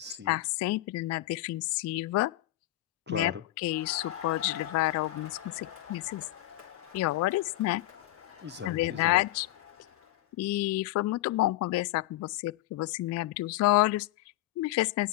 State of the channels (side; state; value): right; quieter; 16.2 dB